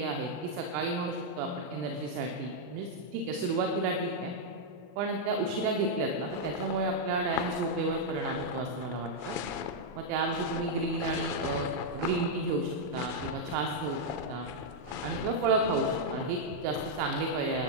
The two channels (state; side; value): late; left; 40 ms